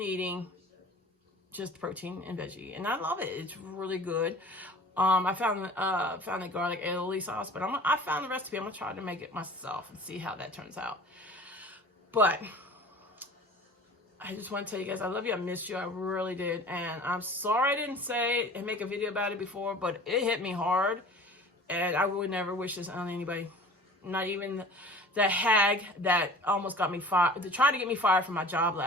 just protein and veggie, and I love it. It's really good. I found a garlic aioli sauce, but I found the recipe. I'm gonna try to make it myself and see how that turns out. But I just want to tell you guys, I love you. I missed you. I really did. And I'm sorry I didn't say and make a video about it before, but it hit me hard. And I would never wish this on anybody. Not even the hag that almost got me fired, to try to get me fired from my job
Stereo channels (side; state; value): both; normal; correlation 0.43